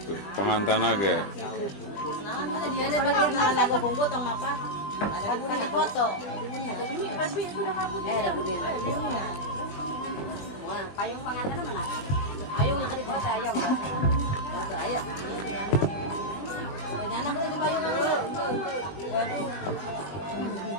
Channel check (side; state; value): right; late; 20 ms